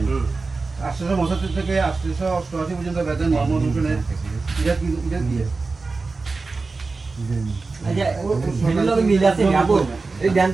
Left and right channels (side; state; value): left; quieter; 3.9 dB